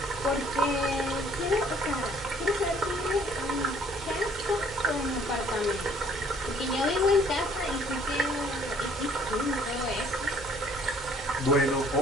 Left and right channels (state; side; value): normal; both; correlation 0.59